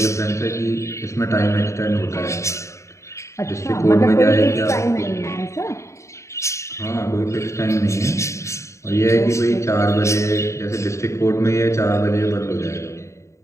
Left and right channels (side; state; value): right; late; 0.14 ms